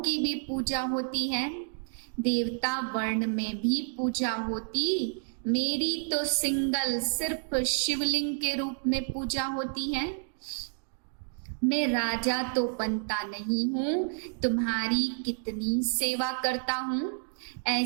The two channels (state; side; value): silent; left; digital silence